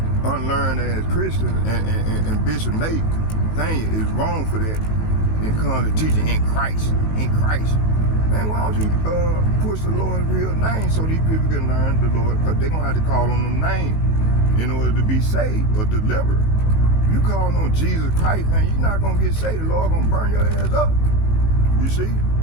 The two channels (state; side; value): late; right; 19 ms